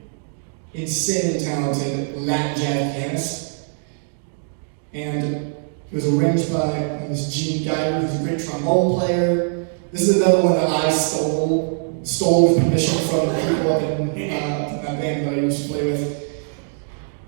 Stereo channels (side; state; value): left; silent; 64 dB below the other